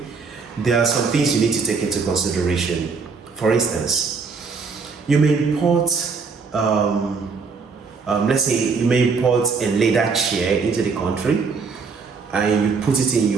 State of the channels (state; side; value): quieter; left; 4.9 dB